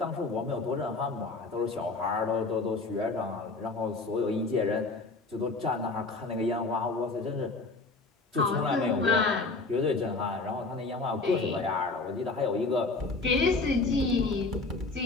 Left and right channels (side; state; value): right; quieter; 3.6 dB